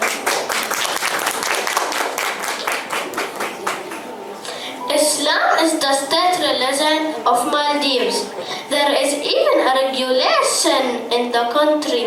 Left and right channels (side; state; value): both; identical; correlation 1.00